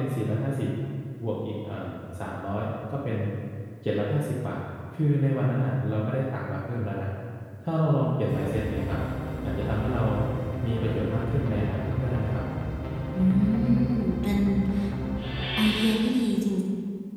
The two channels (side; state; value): both; identical; correlation 1.00